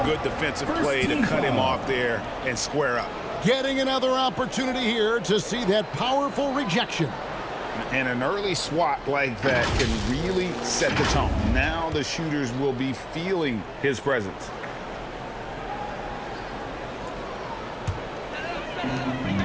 good defensive play to cut him off there and square up. Getting another opportunity here to see that powerful rejection. And an early swat like that can really set the tone. Now the shooters will be feeling his presence.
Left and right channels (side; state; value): both; identical; correlation 1.00